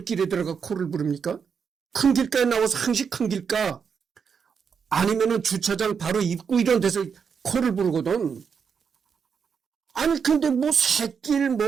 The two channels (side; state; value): left; quieter; 6.5 dB